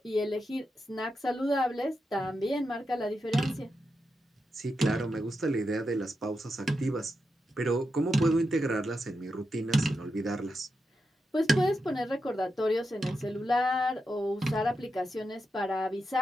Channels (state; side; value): normal; both; correlation 0.87